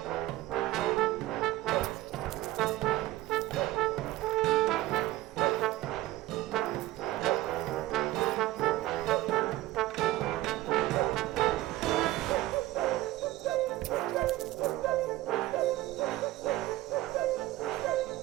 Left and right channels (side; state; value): left; quieter; 16.7 dB